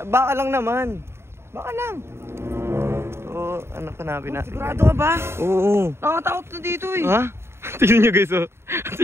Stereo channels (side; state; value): left; late; 0.12 ms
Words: lang naman. Baka lang. So, ano hanapin natin? Sigurado ka ba? Oo. Nakatakot na dito eh. Ha? Tignan nyo guys oh.